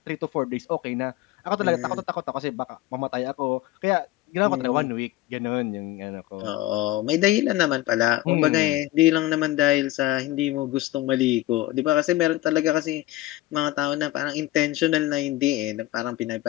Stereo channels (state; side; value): quieter; right; 17.0 dB